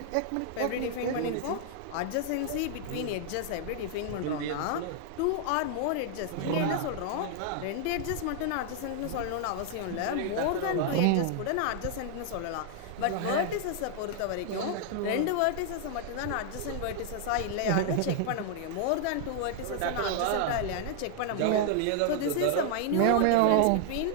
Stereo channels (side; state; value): both; different; correlation 0.00